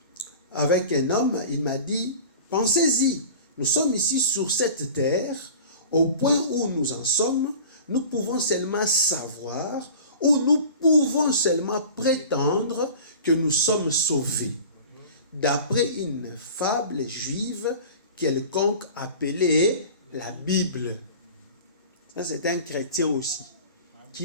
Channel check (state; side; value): inverted; both; correlation -0.39